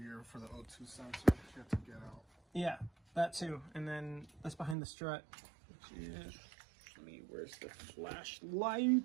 for the O2 sensor that you have to get out. Yeah, that too. And then that's behind the strut, which is, where's the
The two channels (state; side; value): drops out; left; at 4.8 s